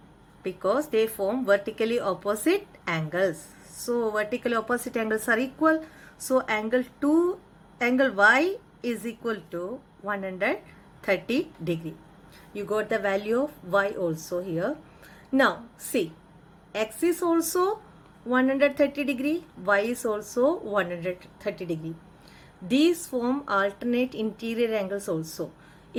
Because they form vertically opposite angles. So vertically opposite angles are equal. So angle Y is equal to 130 degree. You got the value of Y also here. Now see, X is also 130 degree, Y is also 130 degree. These form alternate interior angles also.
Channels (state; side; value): identical; both; correlation 1.00